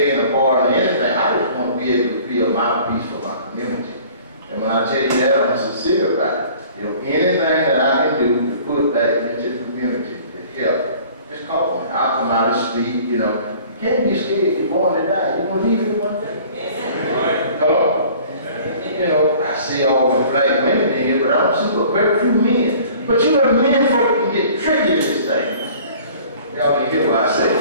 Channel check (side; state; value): both; inverted; correlation -0.49